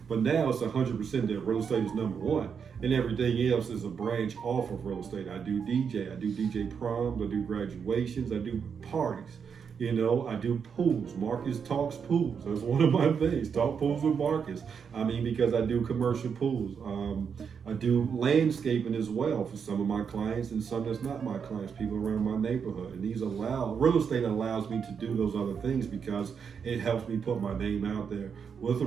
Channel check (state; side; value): quieter; left; 6.6 dB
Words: But now it's 100% that real estate is number one, and everything else is a branch off of real estate. I do DJ proms, I do graduations, I do parties. I do pools. Marcus talks pools. That's one of my things. Talk pools with Marcus. because I do commercial pools. I do landscaping as well for some of my clients and some that's not my clients, people around my neighborhood. And real estate allows me to do those other things because it helps me put my name out there with the